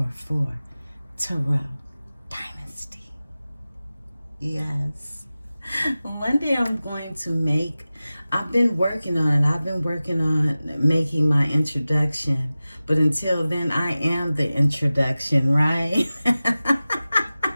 Tarot Dynasty. Yes. One day I'm going to I've been working on it. I've been working on making my introduction. But until then, I am the introduction, right?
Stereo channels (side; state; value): both; inverted; correlation -0.96